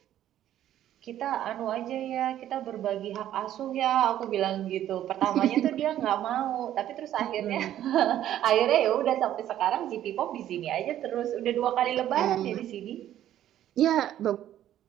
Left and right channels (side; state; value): left; quieter; 12.0 dB